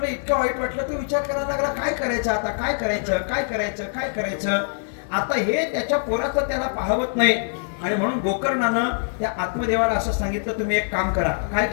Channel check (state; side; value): silent; right; digital silence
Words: वाटलं तर विचार करायला लागला, काय करायचं आता, काय करायचं. आता हे त्याच्या पोराचं त्याला पाहवत नाही. आणि म्हणून गोकर्णानं त्या आत्मदेवाला असं सांगितलं, तुम्ही एक काम करा. काय